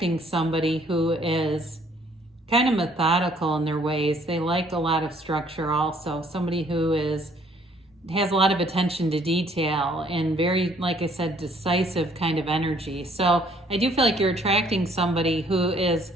somebody who is kind of methodical in their ways. They like a lot of structure also. Somebody who has a lot of attention to detail and very, like I said, decisive kind of energy. So I do feel like you're attracting somebody who is,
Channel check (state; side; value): normal; both; correlation 0.62